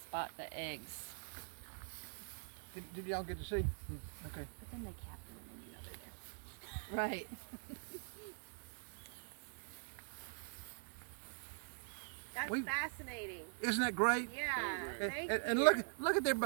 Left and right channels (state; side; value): silent; left; digital silence